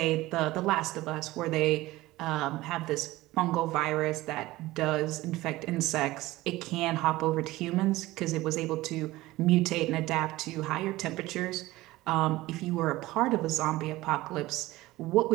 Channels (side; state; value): left; quieter; 18.1 dB